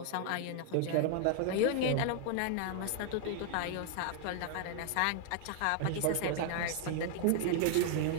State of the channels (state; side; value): different; both; correlation 0.00